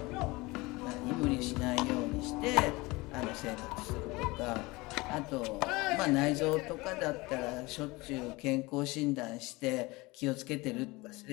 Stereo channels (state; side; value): quieter; right; 22.8 dB